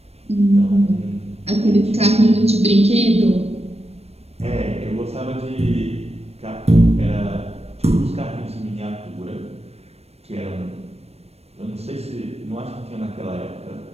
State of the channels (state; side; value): late; left; 0.30 ms